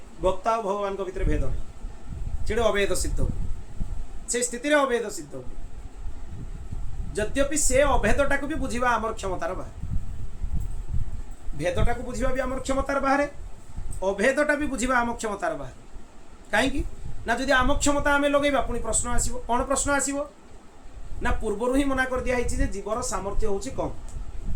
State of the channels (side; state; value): both; identical; correlation 1.00